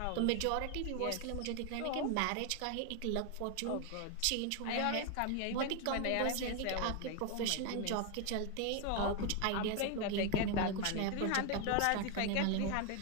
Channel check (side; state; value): both; different; correlation 0.01